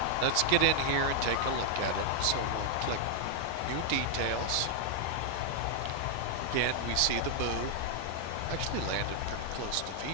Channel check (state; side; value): different; both; correlation 0.00